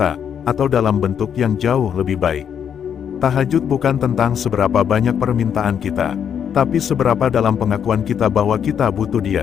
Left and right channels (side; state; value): right; quieter; 8.2 dB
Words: atau dalam bentuk yang jauh lebih baik. Tahajud bukan tentang seberapa banyak permintaan kita, tapi seberapa dalam pengakuan kita bahwa kita butuh